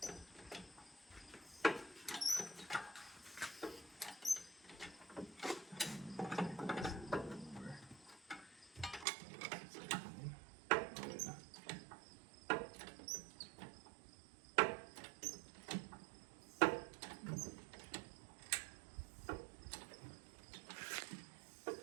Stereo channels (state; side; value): drops out; left; at 9.1 s